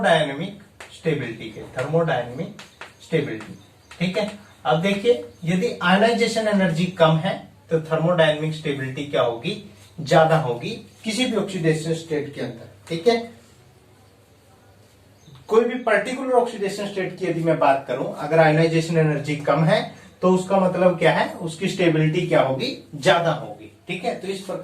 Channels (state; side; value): identical; both; correlation 1.00